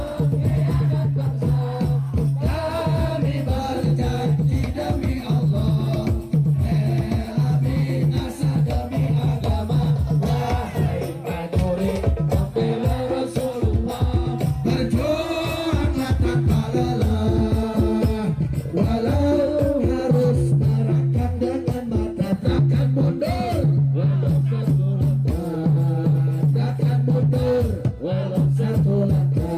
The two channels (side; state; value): both; identical; correlation 1.00